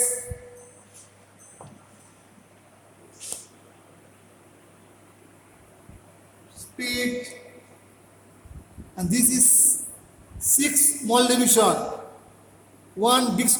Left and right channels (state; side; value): identical; both; correlation 1.00